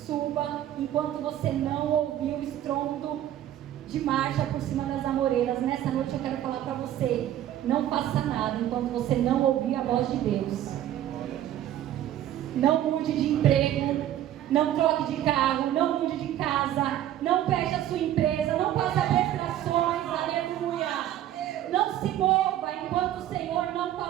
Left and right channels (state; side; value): quieter; left; 12.2 dB